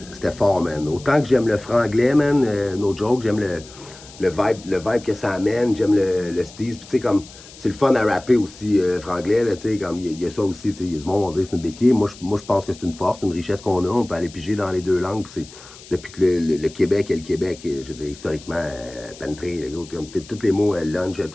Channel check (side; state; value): left; noise; hiss, 19 dB below the sound